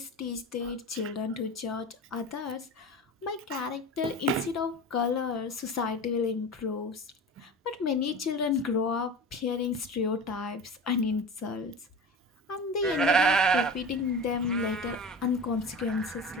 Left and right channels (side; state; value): both; normal; correlation 0.31